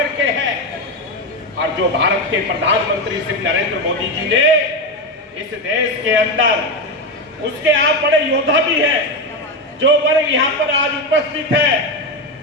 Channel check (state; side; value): normal; both; correlation 0.13